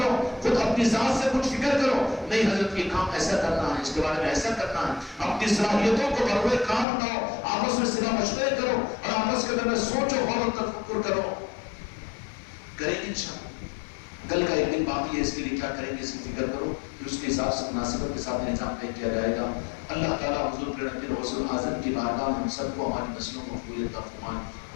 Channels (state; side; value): drops out; right; at 6.9 s